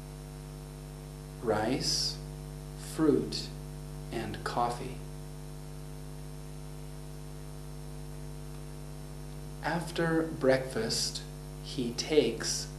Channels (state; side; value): identical; both; correlation 1.00